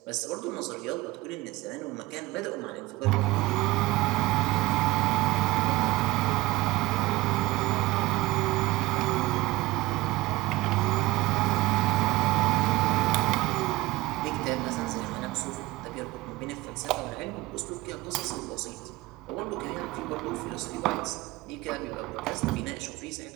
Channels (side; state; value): left; quieter; 19.3 dB